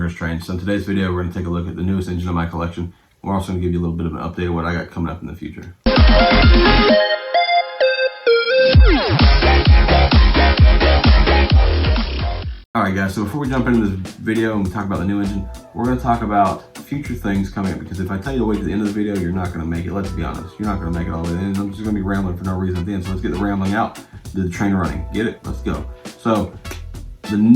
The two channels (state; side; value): identical; both; correlation 1.00